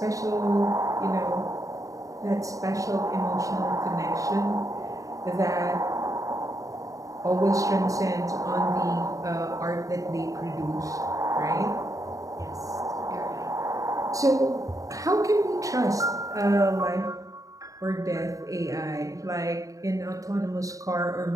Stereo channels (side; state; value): left; late; 0.16 ms